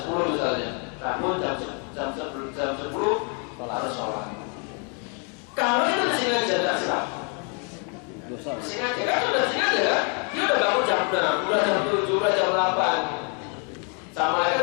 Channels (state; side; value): quieter; right; 37.6 dB